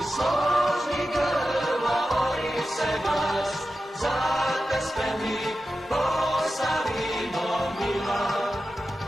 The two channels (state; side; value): normal; both; correlation 0.92